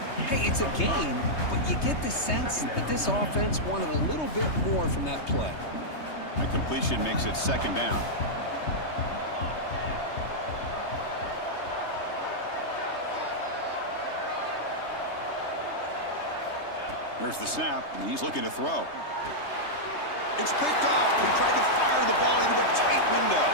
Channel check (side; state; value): right; late; 3.2 ms